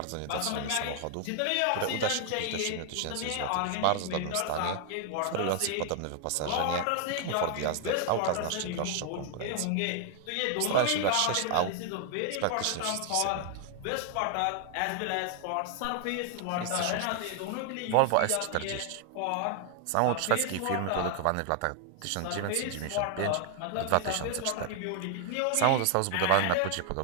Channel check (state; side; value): different; both; correlation 0.00